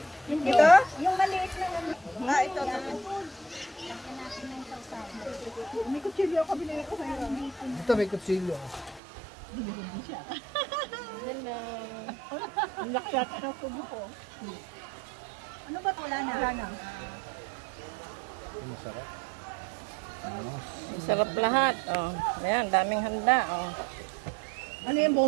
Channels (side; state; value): left; drops out; at 9.0 s